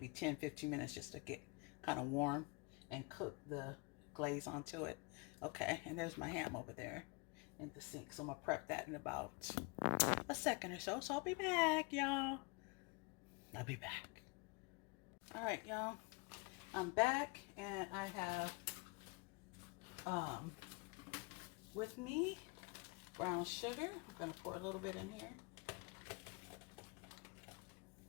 10-15 minutes just to get kind of warm and cook the glaze onto it. Okay, and there's my ham over there in the sink, so I'm gonna prep that in about a second or so. So I'll be back, y'all. I'll be back. All right, y'all, I'm back, and I have with me brown sugar. I'm gonna pour a little bit in here.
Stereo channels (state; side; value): quieter; right; 30.4 dB